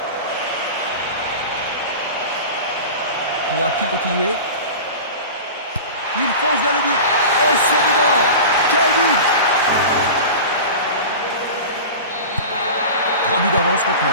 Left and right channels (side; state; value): both; inverted; correlation -0.32